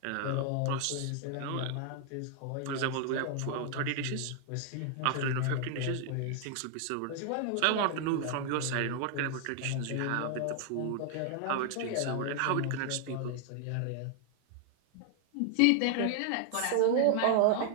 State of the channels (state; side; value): different; both; correlation 0.00